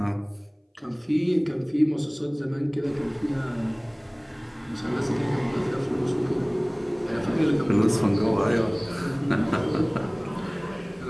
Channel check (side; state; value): both; identical; correlation 1.00